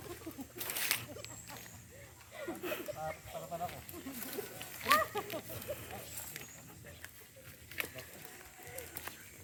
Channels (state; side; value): identical; both; correlation 1.00